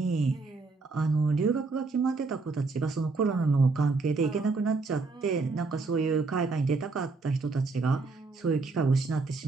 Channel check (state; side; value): quieter; left; 3.9 dB